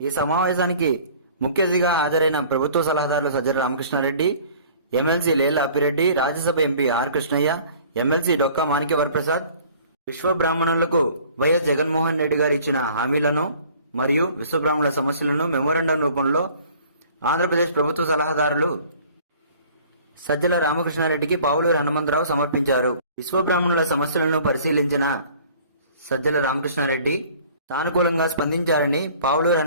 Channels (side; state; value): both; inverted; correlation -0.51